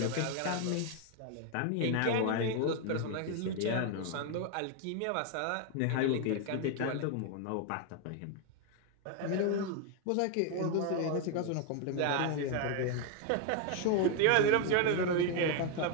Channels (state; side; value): different; both; correlation 0.01